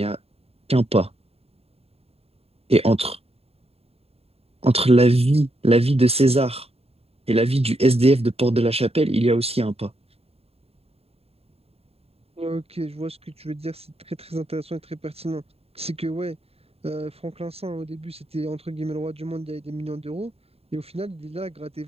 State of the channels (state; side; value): late; left; 0.29 ms